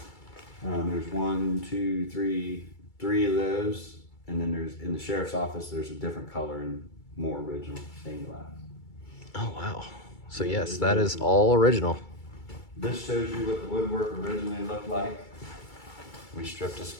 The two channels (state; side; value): late; right; 2.3 ms